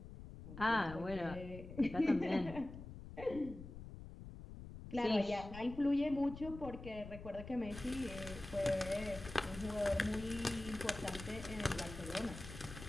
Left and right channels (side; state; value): left; noise; rumble, 12 dB below the sound